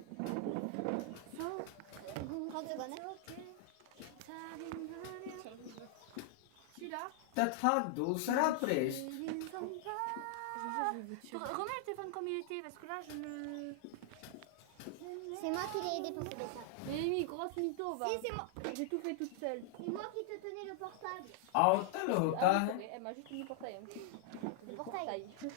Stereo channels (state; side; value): different; both; correlation -0.01